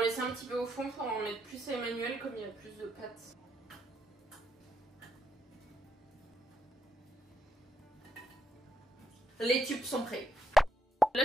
laisser un petit peu au fond pour en mettre plus à Emmanuel, comme il y a plus de pâtes. Les tubes sont prêts. Là,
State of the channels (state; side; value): normal; both; correlation 0.78